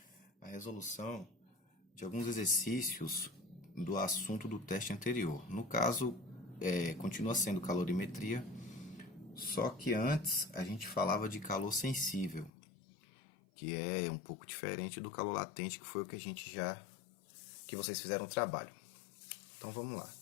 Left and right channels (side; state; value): right; drops out; at 12.5 s